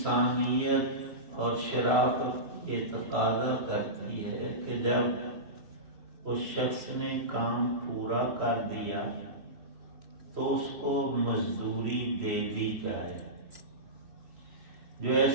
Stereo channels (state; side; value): late; left; 2.6 ms